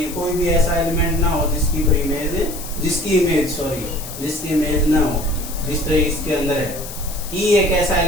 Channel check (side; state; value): left; noise; hiss, 12 dB below the sound